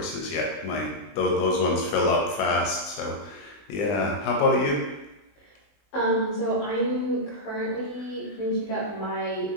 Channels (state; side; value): late; right; 20 ms